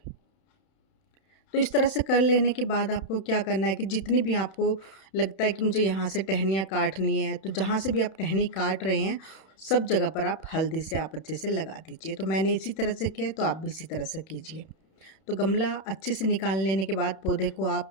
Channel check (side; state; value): right; late; 31 ms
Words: तो इस तरह से कर लेने के बाद आपको क्या करना है कि जितनी भी आपको लगता है कि मुझे यहाँ से टहनियाँ काटनी है, तो जहाँ से भी आप टहनी काट रहे हैं सब जगह पर आप हल्दी से आप अच्छे से लगा दीजिए। तो मैंने इसी तरह से किया, तो आप भी इसी तरह से कीजिए। तो गमला अच्छे से निकाल लेने के बाद पौधे को आप